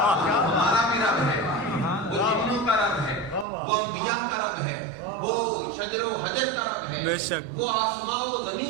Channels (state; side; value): drops out; left; at 3.5 s